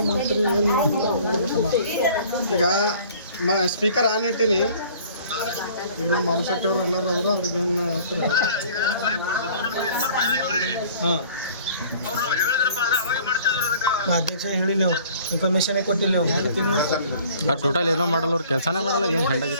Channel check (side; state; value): both; inverted; correlation -0.52